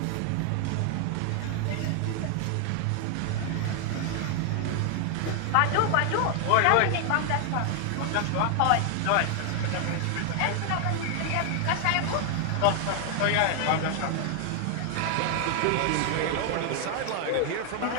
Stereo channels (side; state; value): both; different; correlation 0.00